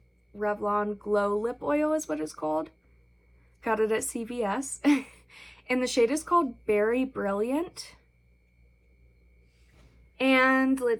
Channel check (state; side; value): identical; both; correlation 1.00